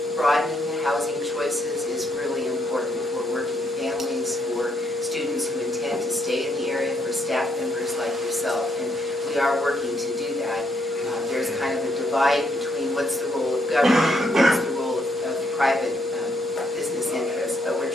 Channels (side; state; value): both; normal; correlation 0.74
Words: broadening housing choices is really important for working families, for students who intend to stay in the area, for staff members like yourself. And we are working to do that. There's kind of a divide between what's the role of government and what's the role of private business interests, but we're